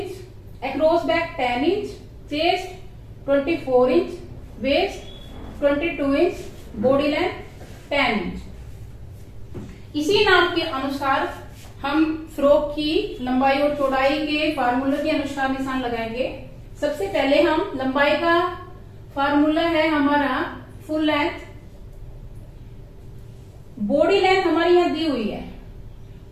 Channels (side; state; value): both; identical; correlation 1.00